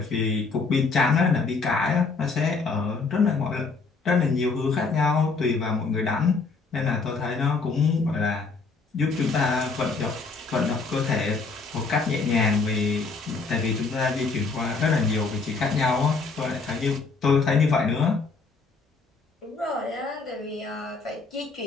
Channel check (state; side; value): quieter; right; 4.3 dB